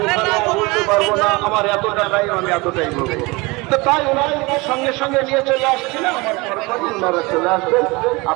বলতে পারবো না, আমার এত টাকাই আমি এতটাই বলবো। তো তাই ওনারা সঙ্গে সঙ্গে নিয়ে চলে আসছিলেন, আমার পরপরই ওনারা চলে আসবেন।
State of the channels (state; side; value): quieter; left; 24.6 dB